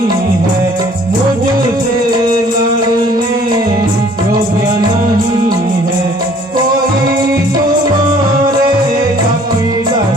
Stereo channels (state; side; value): normal; both; correlation 0.56